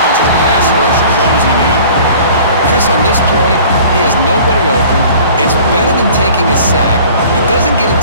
and the pass rush closing in. Chris, on this play, he has nobody open. It's better than taking a sack. He doesn't get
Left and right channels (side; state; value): both; inverted; correlation -0.47